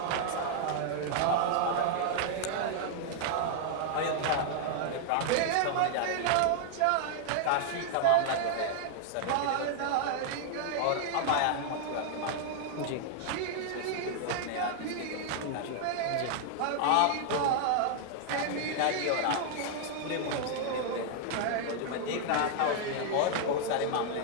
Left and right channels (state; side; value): different; both; correlation -0.01